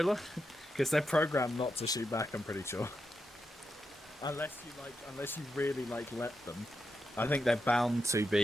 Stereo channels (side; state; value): both; normal; correlation 0.86